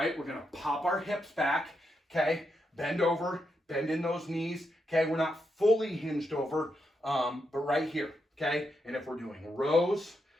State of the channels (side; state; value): both; normal; correlation 0.83